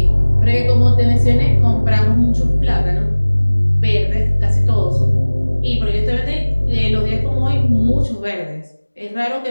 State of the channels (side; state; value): both; inverted; correlation -1.00